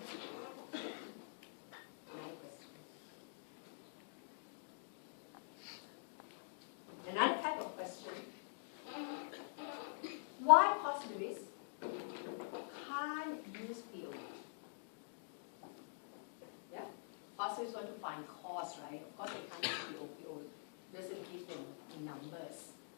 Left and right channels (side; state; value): right; silent; digital silence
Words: Another question. Another type of question. Why positivists can't use PO? Yeah? Positivists want to find cause, right? Of course they can't use PO. PO doesn't give them numbers.